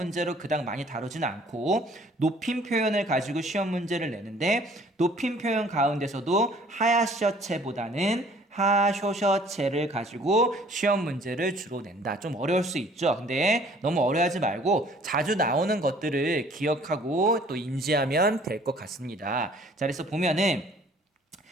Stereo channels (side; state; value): both; normal; correlation 0.55